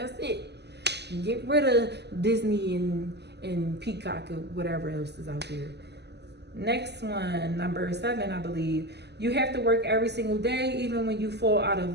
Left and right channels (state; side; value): late; left; 0.49 ms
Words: it. Get rid of Disney and Peacock or whatever else is out there. Next one, number 7, I believe. You have to work every single day, even when you fall out